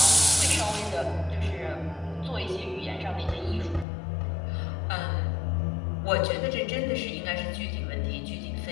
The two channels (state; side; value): drops out; right; at 3.9 s